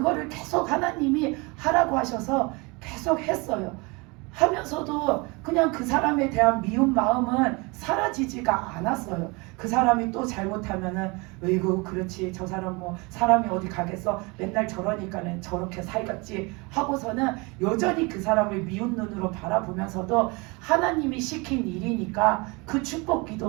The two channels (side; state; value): left; quieter; 27.4 dB